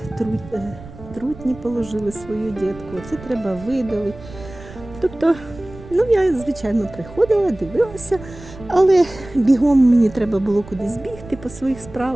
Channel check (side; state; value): right; noise; rumble, 17 dB below the sound